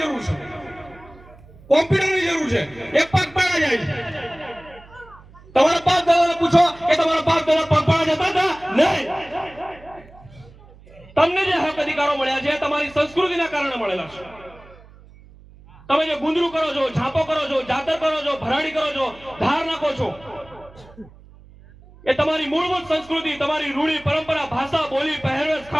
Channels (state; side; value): noise; right; hum, 23 dB below the sound